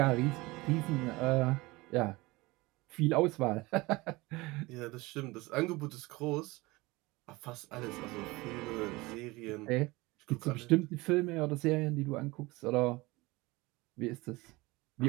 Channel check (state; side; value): quieter; left; 22.2 dB